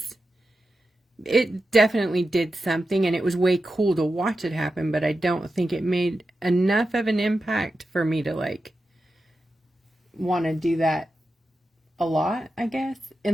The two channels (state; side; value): normal; both; correlation 0.90